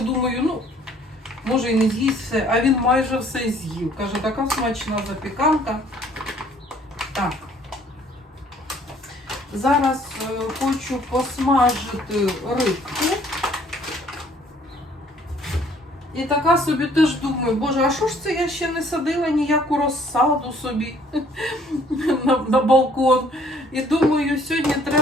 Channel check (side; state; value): both; normal; correlation 0.59